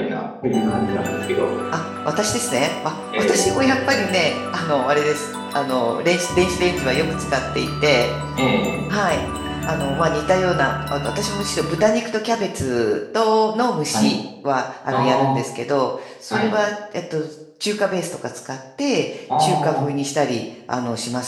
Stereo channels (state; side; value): identical; both; correlation 1.00